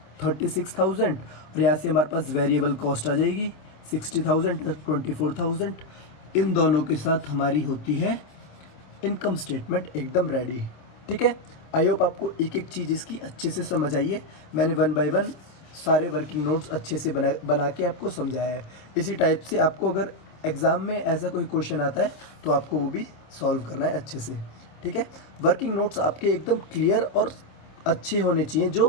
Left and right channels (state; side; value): late; right; 26 ms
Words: 36,000 और यहाँ से हमारे पास वेरिएबल कॉस्ट आ जाएगी 60,000 + 24,000। इन दोनों के साथ हमारी होती है इनकम स्टेटमेंट एकदम रेडी, ठीक है। आई होप आपको एक एक चीज़ इसकी अच्छे से समझ आई है। मैंने 1 बाय 1 सारे वर्किंग नोट्स अच्छे से बना के आपको समझाया है। इसी टाइप से आपको अगर एग्ज़ाम में ऐसा कोई क्वेश्चन आता है तो आपको वो भी सॉल्व करना है अच्छे से, ठीक है। वर्किंग नोट्स आपके एकदम क्लियर और अच्छे होने चाहिए,